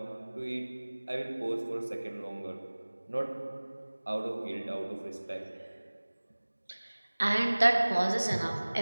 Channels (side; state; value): both; inverted; correlation -1.00